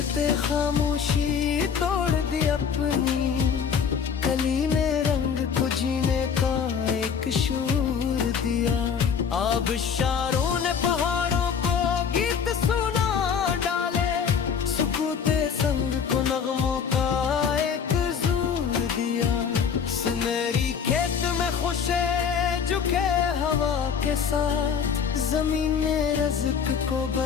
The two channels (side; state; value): right; quieter; 6.9 dB